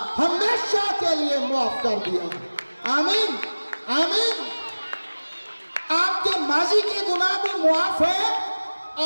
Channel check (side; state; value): both; inverted; correlation -1.00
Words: हमेशा के लिए माफ कर दिया। आमीन, आमीन। आपके माजी के गुनाह भी माफ है,